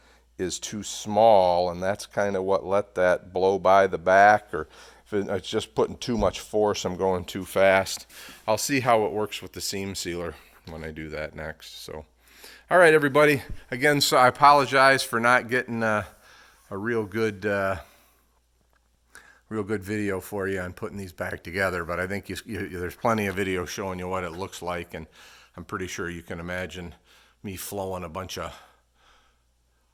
is too small, and that's kind of what let that blow by the back, or if it's just putting too much force, I'm going too fast. I'll see how it works with the seam sealer when I do that next. So, all right, everybody. Again, so I apologize for not getting a real good video for you on putting these back together, but I think there's plenty of video showing you what it looks like, and I'm pretty sure you can imagine me flowing a bunch of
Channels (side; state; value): both; identical; correlation 1.00